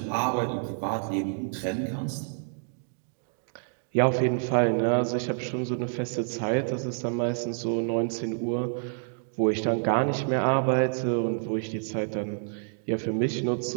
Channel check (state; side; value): silent; left; digital silence